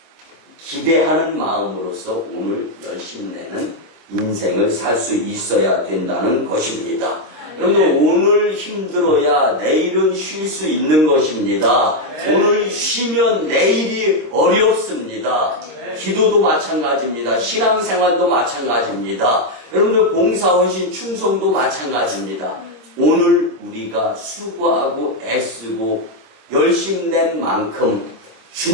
기대하는 마음으로서 오늘 열심내는 인생을 살 수 있어야 된다는 것입니다. 여러분들 오늘 힘들어야 내일은 쉴 수 있는 것입니다. 오늘 쉬면 내일이 어렵습니다. 기도도 마찬가지입니다. 신앙생활도 마찬가지입니다. 여러분들 봉사, 헌신, 충성도 마찬가지입니다. 오늘 우리가 수고하고 애쓰고 열심낸 만큼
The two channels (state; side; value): late; left; 26 ms